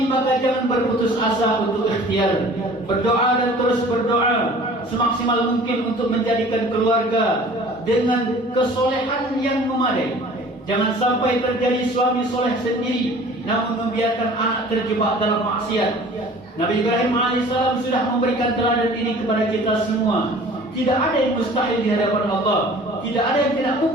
maka jangan berputus asa untuk ikhtiar, berdoa dan terus berdoa semaksimal mungkin untuk menjadikan keluarga dengan kesolehan yang memadai. Jangan sampai terjadi suami soleh sendiri namun membiarkan anak terjebak dalam maksiat. Nabi Ibrahim alaihissalam sudah memberikan teladan ini kepada kita semua. Tidak ada yang mustahil di hadapan Allah. Tidak ada yang tidak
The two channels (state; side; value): normal; both; correlation 0.47